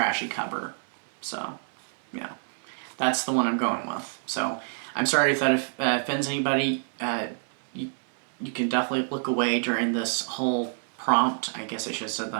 cover. So, yeah, that's the one I'm going with. So, I'm sorry if that offends anybody. You can definitely look away during this whole prompt. I guess I should have said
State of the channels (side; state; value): left; silent; digital silence